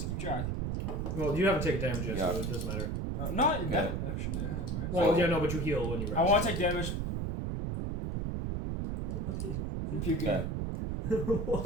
to keep track? Well, you haven't taken damage yet, Yeah. so it doesn't matter. No, that actually I have, right? Well, So- yeah, no, but you heal when you rest. I want to take damage from puking. Okay.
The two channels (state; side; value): noise; right; rumble, 1 dB below the sound